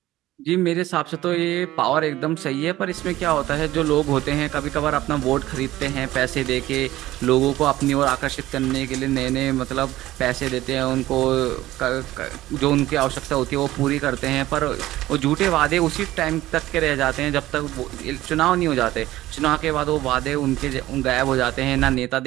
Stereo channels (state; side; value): quieter; left; 15.8 dB